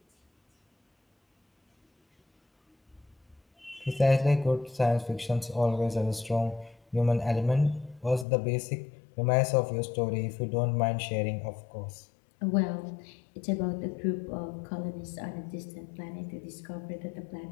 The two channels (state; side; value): drops out; right; at 8.2 s